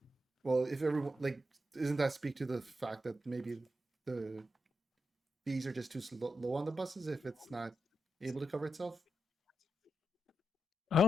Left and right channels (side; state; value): both; normal; correlation 0.85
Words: well, if everyone doesn't that speak to the fact that maybe the fees are just too low on the buses if it's not able to cover itself? I